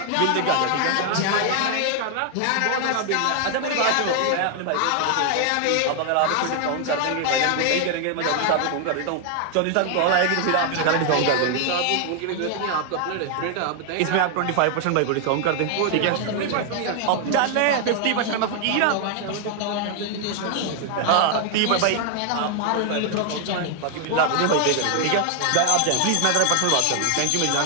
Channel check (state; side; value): different; both; correlation 0.00